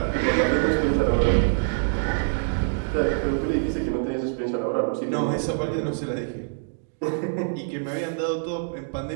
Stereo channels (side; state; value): left; silent; digital silence